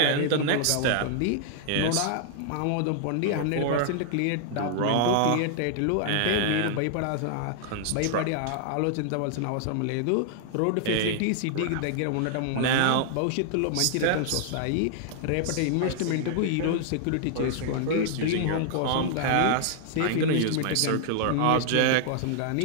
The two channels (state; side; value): different; both; correlation -0.01